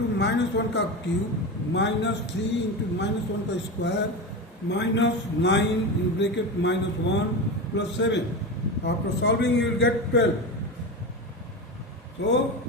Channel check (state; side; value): normal; both; correlation 0.22